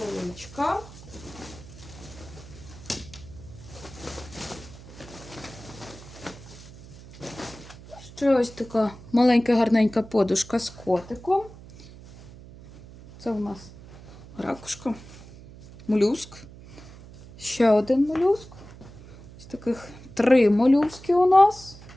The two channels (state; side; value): noise; right; hum, 18 dB below the sound